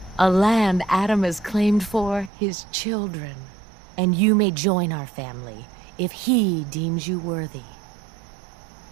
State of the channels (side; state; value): left; drops out; at 2.3 s